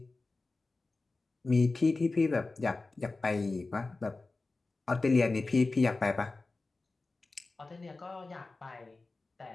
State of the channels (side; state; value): right; quieter; 3.5 dB